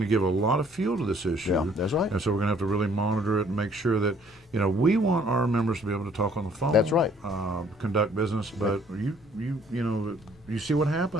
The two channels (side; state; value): both; normal; correlation 0.60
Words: to give a lot of fuel to this issue. Yeah, that's right. And so we're going to have to really monitor it and make sure that, we want our members to be able to talk on the phone. That's right. Conduct business, but you see what